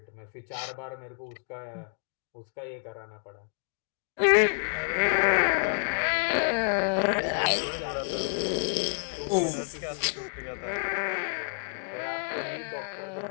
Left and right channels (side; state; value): right; silent; 58 dB below the other